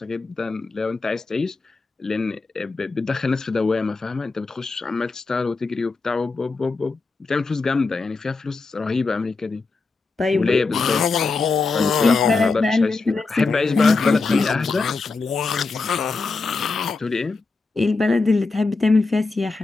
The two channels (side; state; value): right; quieter; 3.9 dB